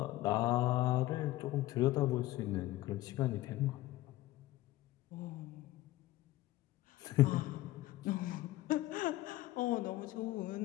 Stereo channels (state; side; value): quieter; right; 16.6 dB